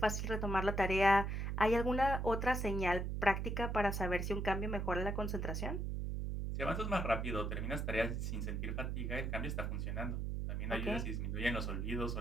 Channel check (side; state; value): right; noise; hum, 1 dB below the sound